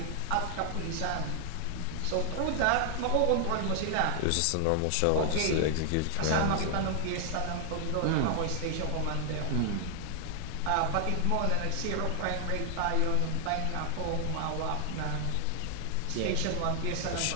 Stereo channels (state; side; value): different; both; correlation 0.00